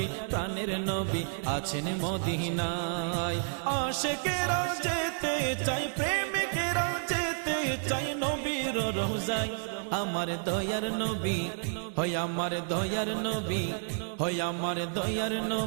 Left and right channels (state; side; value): silent; left; digital silence